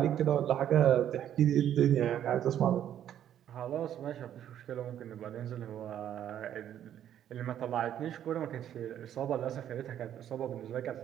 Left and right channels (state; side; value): quieter; left; 10.5 dB